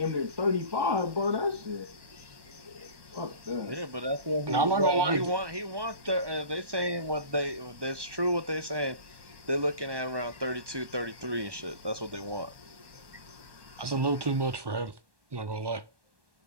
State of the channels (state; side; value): late; left; 1.2 ms